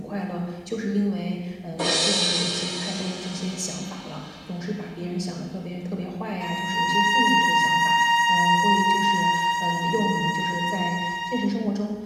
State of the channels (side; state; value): both; identical; correlation 1.00